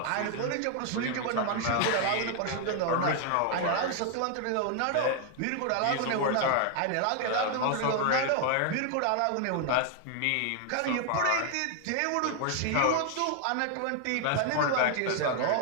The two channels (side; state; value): both; different; correlation 0.00